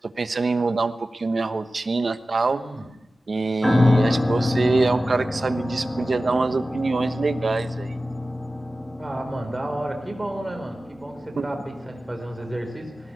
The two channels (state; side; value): normal; both; correlation 0.95